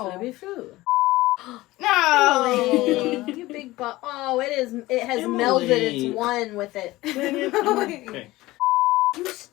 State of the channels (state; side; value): quieter; right; 18.4 dB